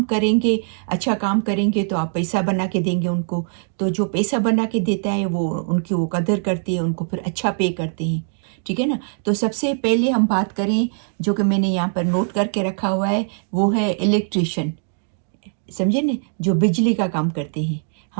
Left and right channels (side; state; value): left; silent; digital silence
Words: करेंगे तो आप पैसा बना के देंगे उनको। तो जो पैसा बना के देता है वो उनकी वो कदर करते हैं, उनको फिर अच्छा पे करते हैं, ठीक है ना? तो सबसे पहले हम बात करें, जो कि मैंने यहाँ पर नोट करके रखा हुआ है, वो है इलेक्ट्रिशियन। समझे न, जो बिजली का काम करते हैं।